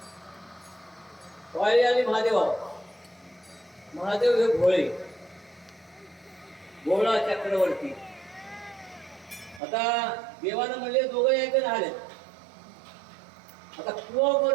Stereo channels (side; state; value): left; drops out; at 9.6 s